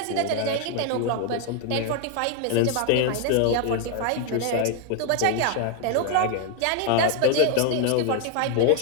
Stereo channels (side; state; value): both; different; correlation 0.00